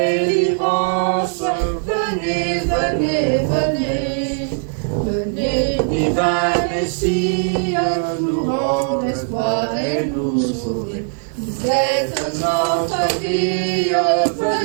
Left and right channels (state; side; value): silent; left; digital silence